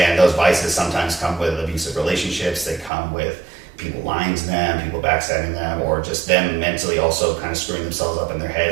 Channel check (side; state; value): left; drops out; at 2.9 s